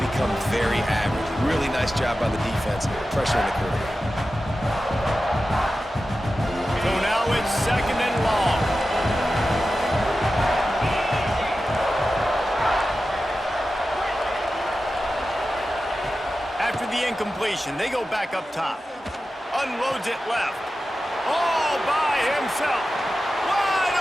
become very average. Really nice job by the defense, pressuring the quarterback. So now it's second and long. After the incompletion, they go back up top. Unloads it left. All by himself. Wide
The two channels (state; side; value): normal; both; correlation 0.93